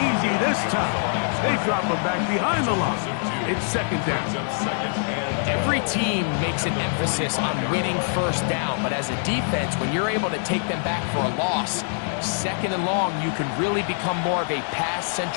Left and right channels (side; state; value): right; silent; 60 dB below the other